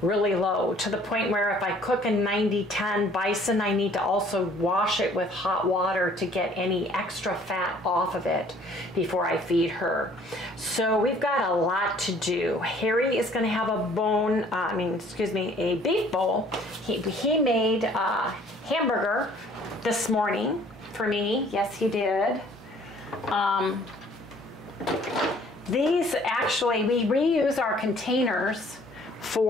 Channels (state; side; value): normal; both; correlation 0.56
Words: really low, to the point where if I cook a 90-10 bison, I need to also wash it with hot water to get any extra fat off of it before I feed her. So we've got a lot to do. Harry is going to have a beef bowl. He made a hamburger this morning for me. Yes, he did. These actually, we reuse our containers